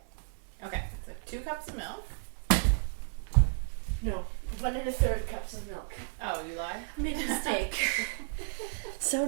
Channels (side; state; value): left; silent; digital silence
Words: Okay, so 2 cups of milk. No, 1 1/3 cups of milk. Oh, you lied? I made a mistake. So